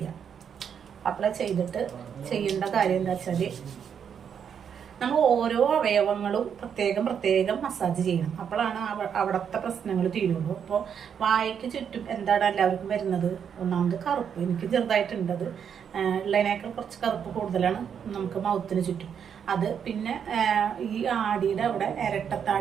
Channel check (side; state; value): left; quieter; 7.8 dB